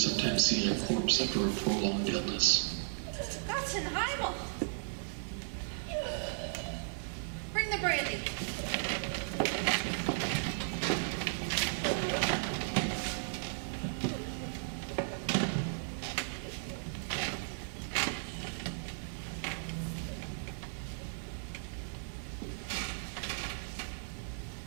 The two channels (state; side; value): silent; left; 54 dB below the other